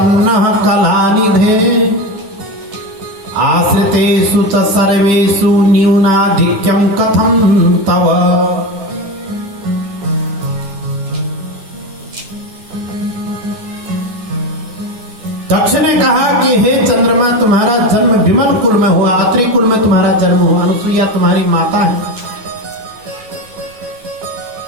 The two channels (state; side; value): late; left; 9.8 ms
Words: कलानिधे आश्रितेषु च सर्वेषु न्यूनाधिक्यं कथं तव। दक्ष ने कहा कि हे चंद्रमा तुम्हारा जन्म विमल कुल में हुआ, अत्रि कुल में तुम्हारा जन्म हुआ, अनुसुईया तुम्हारी माता है